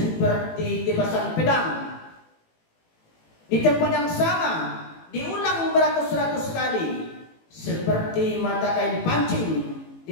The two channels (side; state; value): right; late; 18 ms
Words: tebasan pedang. Di tempat yang sama diulang beratus-ratus kali, seperti mata kain pancing